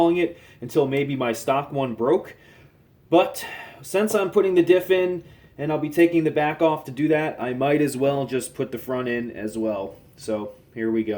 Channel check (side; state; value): both; identical; correlation 1.00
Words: it until maybe my stock one broke. But since I'm putting the diff in and I'll be taking the back off to do that, I might as well just put the front in as well. So here we